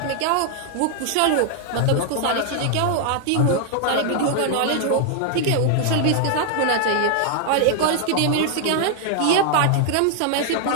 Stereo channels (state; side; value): different; both; correlation 0.00